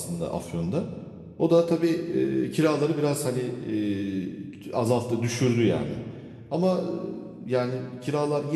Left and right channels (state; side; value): identical; both; correlation 1.00